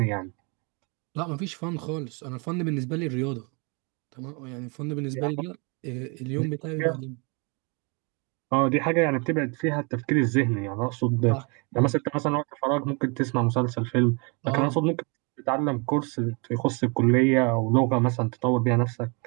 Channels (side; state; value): left; quieter; 32.1 dB